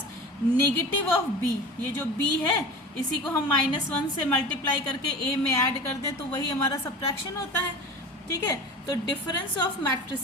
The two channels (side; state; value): both; normal; correlation 0.35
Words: negative of b, ये जो b है इसी को हम -1 से मल्टीप्लाई करके a में ऐड कर दें तो वही हमारा सब्ट्रैक्शन होता है। ठीक है, तो difference of